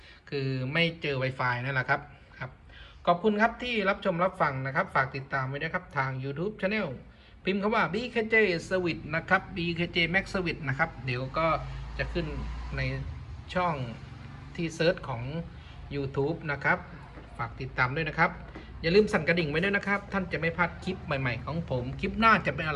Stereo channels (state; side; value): identical; both; correlation 1.00